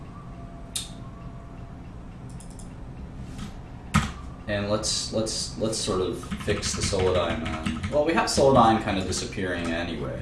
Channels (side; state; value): both; identical; correlation 1.00